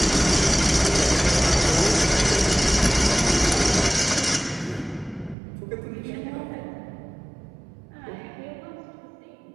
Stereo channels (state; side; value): drops out; left; at 5.4 s